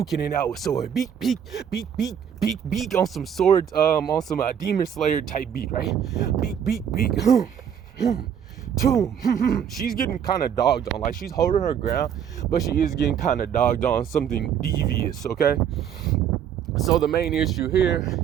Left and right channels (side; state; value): left; quieter; 8.6 dB